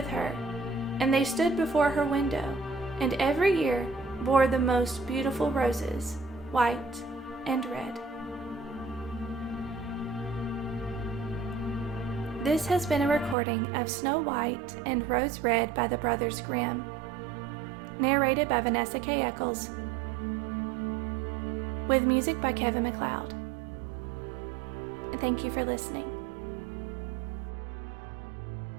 her, and they stood before her window, and every year bore the most beautiful roses, white and red. This has been a recording of Snow White and Rose Red by the Brothers Grimm, narrated by Vanessa K. Eccles, with music by Kevin MacLeod. Thank you for listening.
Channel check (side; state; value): left; drops out; at 13.4 s